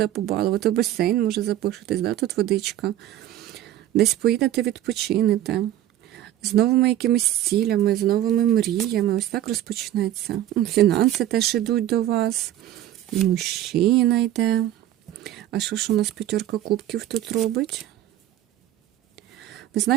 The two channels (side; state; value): left; quieter; 12.7 dB